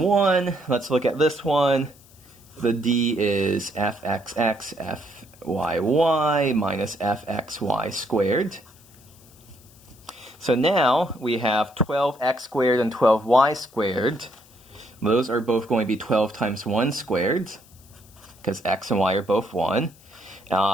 Let's look at this one. The D is fxx, fyy minus fxy squared. So now we have 12x squared and 12y squared. Those are both going to be 12 times 1 squared, because x and y are both 1.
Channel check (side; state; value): left; noise; hiss, 26 dB below the sound